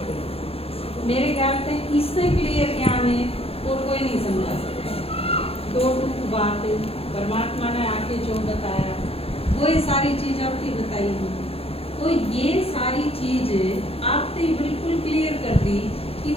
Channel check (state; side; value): late; right; 0.28 ms